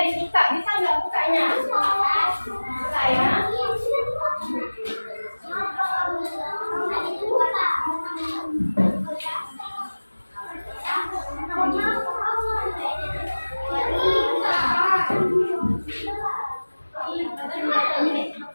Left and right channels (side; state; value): both; inverted; correlation -1.00